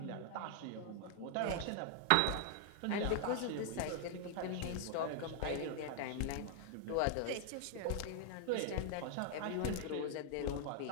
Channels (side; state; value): both; different; correlation 0.00